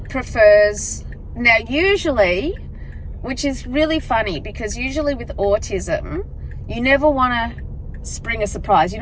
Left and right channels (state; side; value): identical; both; correlation 1.00